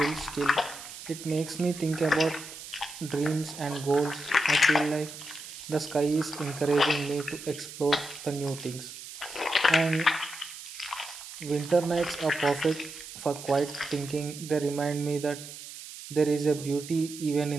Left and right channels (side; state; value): right; noise; hiss, 13 dB below the sound